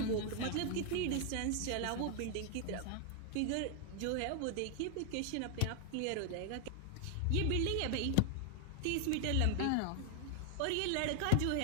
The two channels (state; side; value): different; both; correlation 0.00